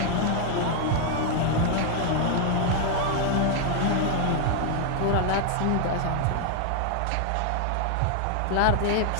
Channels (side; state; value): both; different; correlation 0.00